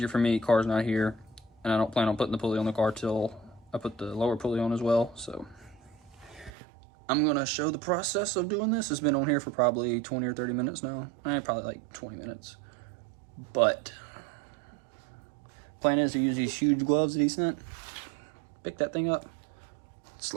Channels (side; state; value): left; drops out; at 6.5 s